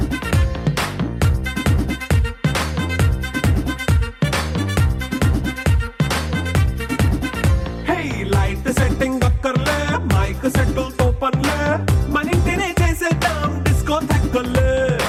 Hey light setting అక్కర్లే మైక్ సెట్టులతో పనులే మన ఇంటినే చేసేద్దాం డిస్కో థక్కర్లే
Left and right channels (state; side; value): identical; both; correlation 1.00